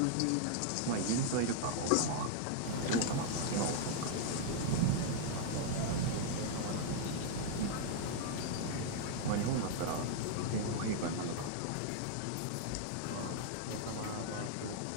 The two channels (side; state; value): both; different; correlation -0.01